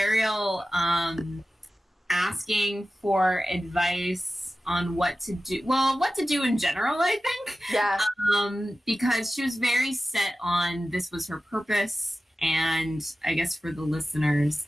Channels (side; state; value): both; normal; correlation 0.95